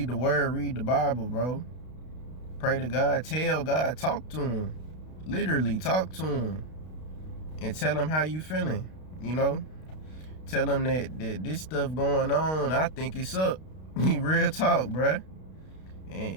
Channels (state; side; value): late; right; 32 ms